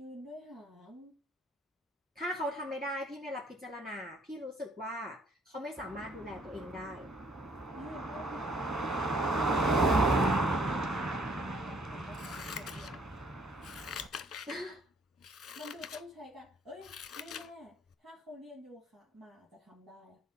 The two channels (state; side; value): normal; both; correlation 0.61